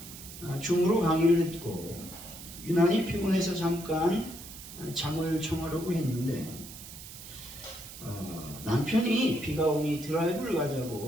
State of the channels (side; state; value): right; noise; hiss, 14 dB below the sound